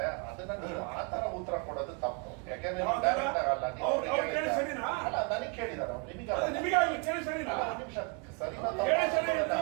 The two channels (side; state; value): left; quieter; 32.5 dB